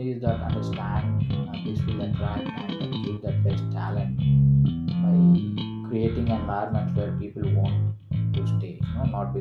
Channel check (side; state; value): both; identical; correlation 1.00